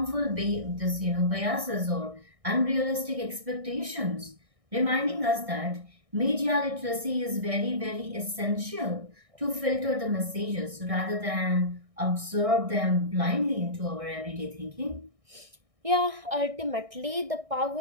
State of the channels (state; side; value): late; left; 1.6 ms